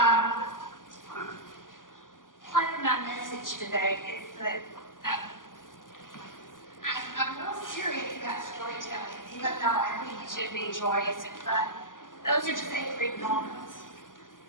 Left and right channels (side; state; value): right; late; 0.89 ms